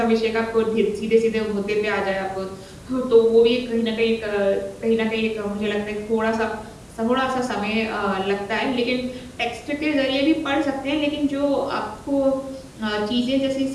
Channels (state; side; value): identical; both; correlation 1.00